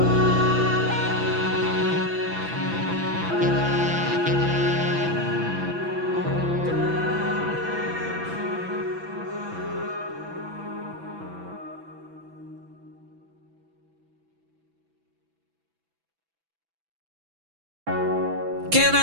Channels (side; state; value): left; late; 6.0 ms